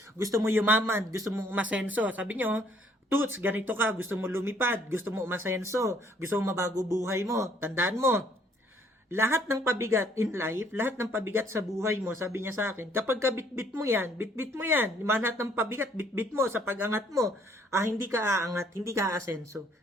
gusto mo yumaman, gusto mo umasenso. Sabi niyo, Toots, ganito ka, gusto mo lumipad, gusto mo umasenso, gusto mo mabago buhay mo. Tandaan mo, lahat ng pabigat in life, lahat ng pabigat sa buhay mo, sabi niya sa akin, kapag ka bitbit mo yan, lahat ng pabigat, bitbit mo sa pag-angat mo, hindi ka aangat, hindi ka aasenso.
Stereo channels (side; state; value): both; normal; correlation 0.63